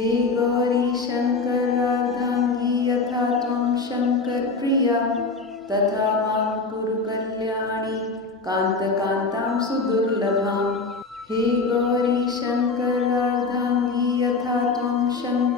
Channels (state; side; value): quieter; right; 4.1 dB